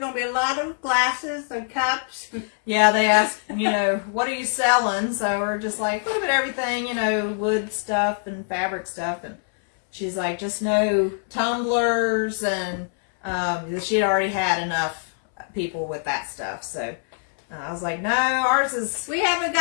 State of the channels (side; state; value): right; silent; 63 dB below the other